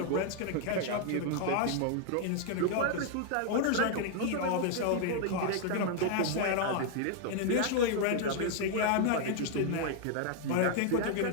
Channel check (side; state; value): both; different; correlation 0.00